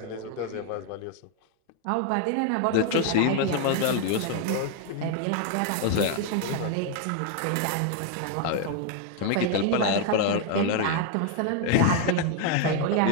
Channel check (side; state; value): both; different; correlation 0.00